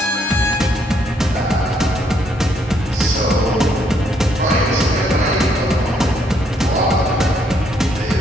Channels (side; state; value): both; normal; correlation 0.71